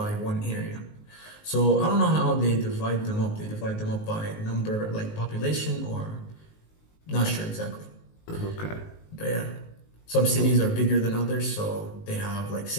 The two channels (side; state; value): right; late; 19 ms